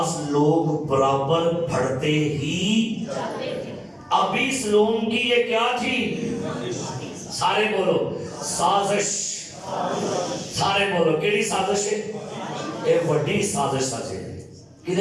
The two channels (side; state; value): both; identical; correlation 1.00